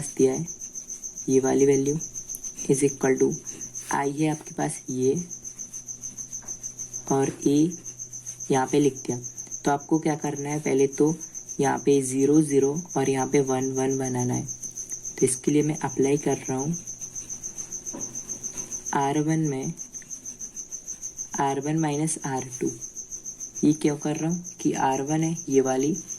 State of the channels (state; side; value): identical; both; correlation 1.00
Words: दिया है, ये वाली वैल्यू = I है आपके पास ये, और A यहाँ पे लिख दिया। तो आपको क्या करना है, पहले तो यहाँ पे 0 0 और यहाँ पे 1 1 बनाना है। तो इसके लिए मैं अप्लाई कर रहा हूँ R1 में R1 - R2। ये क्यों कर रहा हूँ कि R1 है ये वाली,